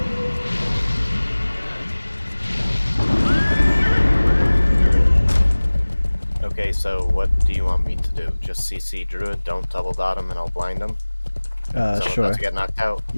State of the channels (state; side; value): inverted; both; correlation -1.00